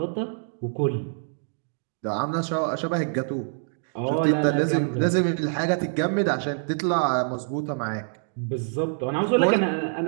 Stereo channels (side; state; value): left; silent; digital silence